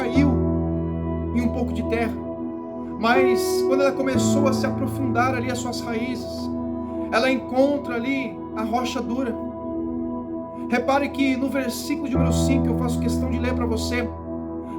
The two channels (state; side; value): identical; both; correlation 1.00